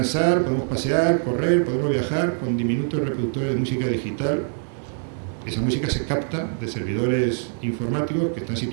podemos pasear, correr, podemos viajar con diminutos reproductores de música digital, esa música se capta de servidores informáticos que están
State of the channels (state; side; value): silent; left; 63 dB below the other